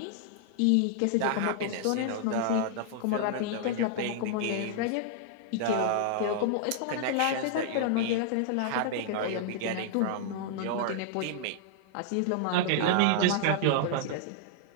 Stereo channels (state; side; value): different; both; correlation -0.01